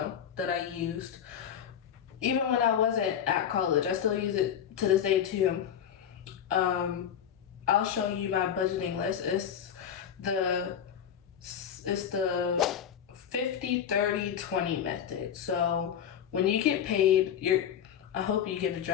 that I used even when I wasn't at college. I still use it to this day too. I'll show you my budgeting list. It's the 50, 30, 20 method. So when you get paid, I hope you get a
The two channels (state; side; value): quieter; right; 8.9 dB